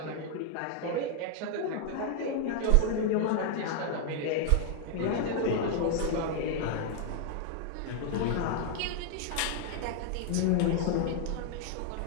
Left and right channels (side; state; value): both; different; correlation 0.00